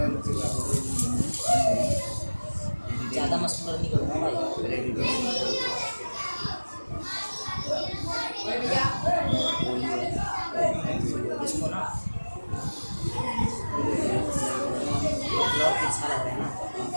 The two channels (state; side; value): inverted; both; correlation -1.00